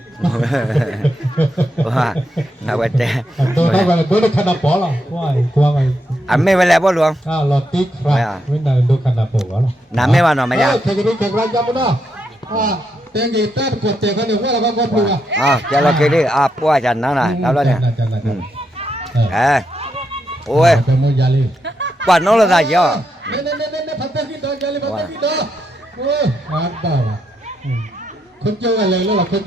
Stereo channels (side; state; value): both; normal; correlation 0.81